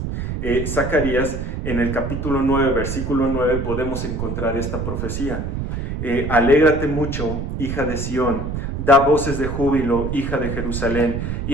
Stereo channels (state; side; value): noise; right; rumble, 4 dB below the sound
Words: Zacarías, en el capítulo 9, versículo 9, podemos encontrar esta profecía. Alégrate mucho, hija de Sión, da voces de júbilo, hija de Jerusalén,